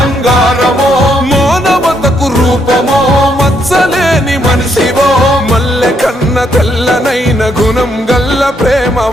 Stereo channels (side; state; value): both; normal; correlation 0.74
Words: మానవతకు రూపమో మచ్చలేని మనిషివో మల్లె కన్న తెల్లనైన గుణం గల్ల